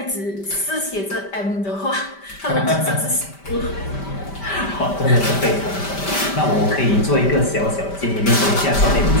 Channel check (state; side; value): late; right; 5.1 ms